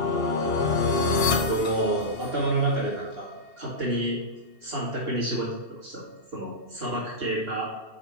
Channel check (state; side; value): late; left; 2.7 ms